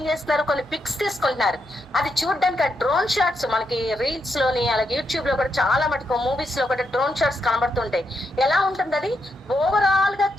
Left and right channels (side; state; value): both; normal; correlation 0.82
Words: చేస్తున్నారు, కొన్ని పిక్స్ తీసుకుంటున్నారు. అది చూడడానికి ఆ డ్రోన్ షాట్స్ మనకి రీల్స్ లోని అలాగే యూట్యూబ్ లో కూడా చాలా మటుకు మూవీస్ లో కూడా డ్రోన్ షాట్స్ కనబడుతుంటాయి. ఎలా ఉంటుంది అది, ఓవరాల్ గా